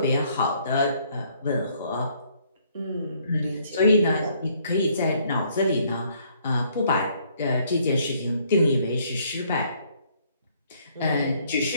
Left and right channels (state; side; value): inverted; both; correlation -0.65